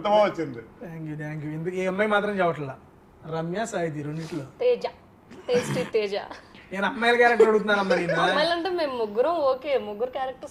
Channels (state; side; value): identical; both; correlation 1.00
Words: బాగా వచ్చింది. Thank you. ఎందుకు ఈ అమ్మాయి మాత్రం చెప్పట్లా, రమ్య సాహితి 2 తేజ, టేస్టీ తేజ. నేను అమ్మాయిల క్యారెక్టర్ అడుగుతున్నానమ్మా నేను. అమ్మాయిలంటే మేము ముగ్గురం ఓకే, 3